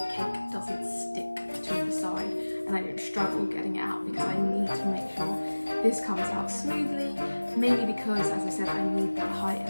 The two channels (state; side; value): inverted; both; correlation -1.00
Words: cake doesn't stick to the side and I don't struggle getting it out, because I need to make sure this comes out smoothly, mainly because, as I said, I need that height